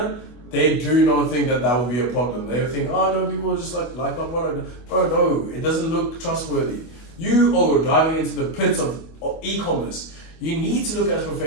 they do not think that will be a problem. They think, oh no, people just like my product. Bro, no, it doesn't look trustworthy. You are diving into the pits of e-commerce. You need to look as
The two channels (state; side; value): late; right; 24 ms